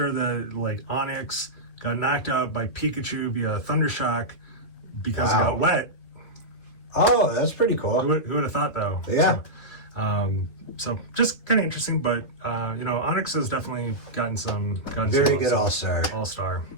that like Onyx got knocked out by Pikachu via Thunder Shock because it got wet. Oh, that's pretty cool. Who would have thought, though? Yeah. So just kind of interesting, but Onyx has definitely gotten very good all-star. All-star.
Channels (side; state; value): right; late; 3.0 ms